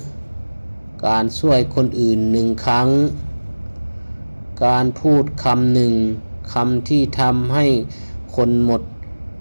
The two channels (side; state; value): both; inverted; correlation -1.00